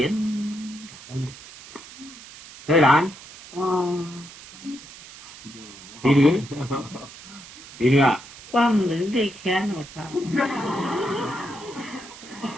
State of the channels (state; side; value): noise; right; hiss, 17 dB below the sound